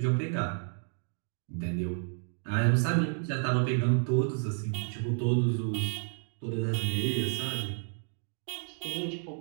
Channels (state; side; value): silent; left; 57 dB below the other